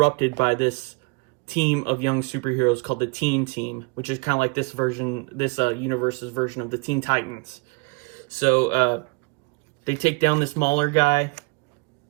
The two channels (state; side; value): quieter; left; 30.8 dB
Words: by this team of young superheroes called the Teen Team, which is kind of like this universe's version of the Teen Titans. So they take down this Mahler guy.